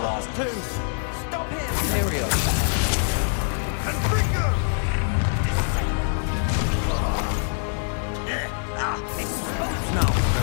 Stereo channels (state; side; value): silent; right; 62 dB below the other